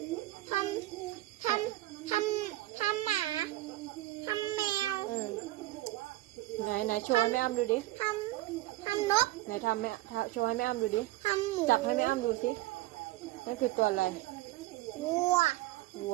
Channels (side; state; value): left; quieter; 17.8 dB